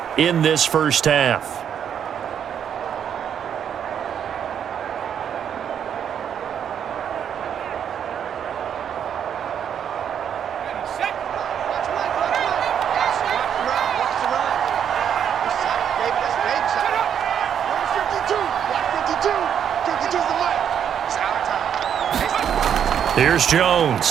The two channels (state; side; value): quieter; left; 8.6 dB